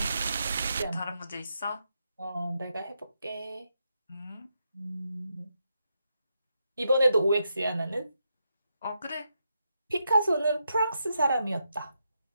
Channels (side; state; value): both; inverted; correlation -0.83